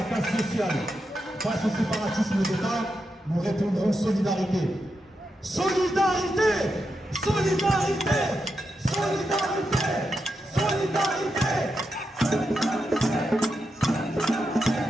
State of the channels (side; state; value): both; normal; correlation 0.86